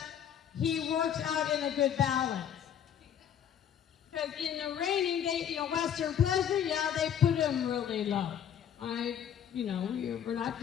he works out in a good balance. Because in the reining, Western Pleasure, they put him really low. We're not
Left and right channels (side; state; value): right; quieter; 9.1 dB